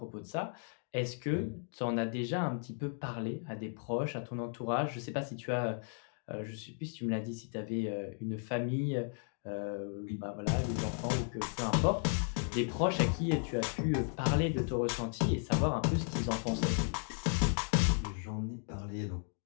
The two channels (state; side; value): silent; right; 54 dB below the other